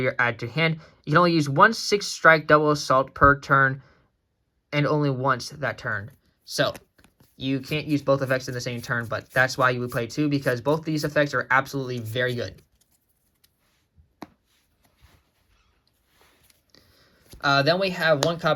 add to your hand. You can only use one 6 strike double assault per turn and only once that turn. So you can't use both effects in the same turn, but that's why you would play 2, because both these effects are absolutely very good. Then we have 1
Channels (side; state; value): both; identical; correlation 1.00